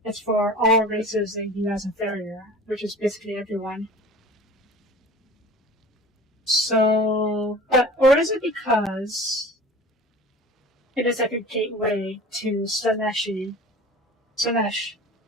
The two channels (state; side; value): normal; both; correlation 0.40